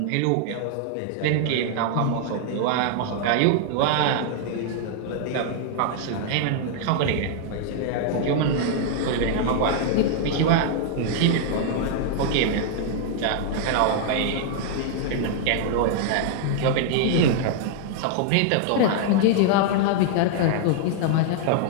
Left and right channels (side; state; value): both; different; correlation -0.01